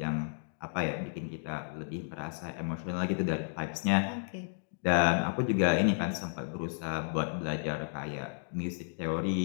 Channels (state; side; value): silent; right; digital silence